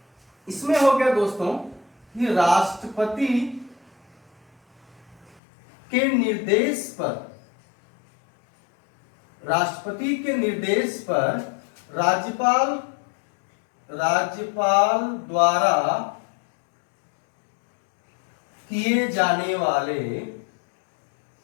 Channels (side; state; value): right; drops out; at 5.4 s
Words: इसमें हो गया दोस्तों कि के निर्देश पर, राष्ट्रपति के निर्देश पर राज्यपाल द्वारा किए जाने वाले